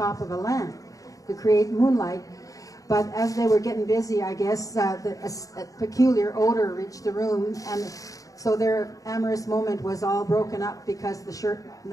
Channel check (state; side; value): late; right; 0.17 ms